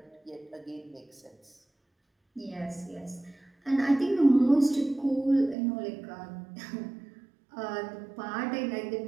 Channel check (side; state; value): left; drops out; at 5.6 s